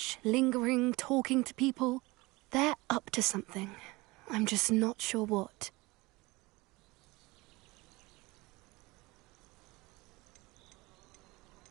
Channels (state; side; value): quieter; left; 22.6 dB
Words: lingering, talking to people. They're up to something. I'm just not sure what.